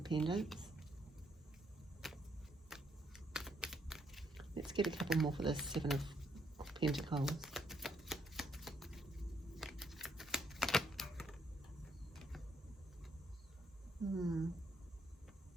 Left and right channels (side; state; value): both; normal; correlation 0.73